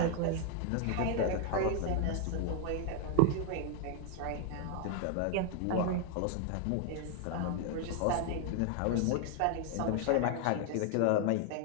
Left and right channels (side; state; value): both; different; correlation 0.00